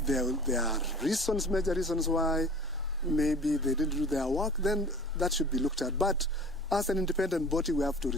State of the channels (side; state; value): both; normal; correlation 0.43